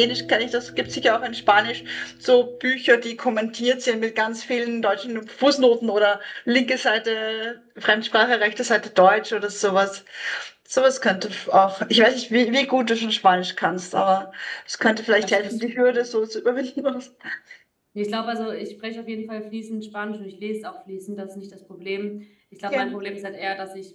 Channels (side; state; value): both; identical; correlation 1.00